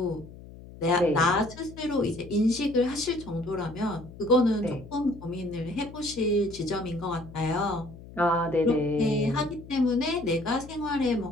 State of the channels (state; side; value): noise; left; hum, 17 dB below the sound